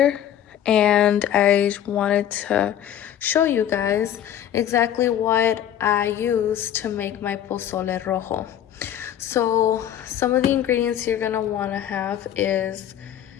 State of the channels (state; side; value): quieter; right; 10.6 dB